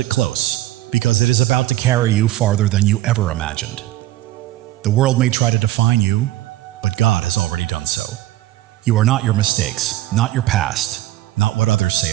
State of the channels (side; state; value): left; quieter; 15.0 dB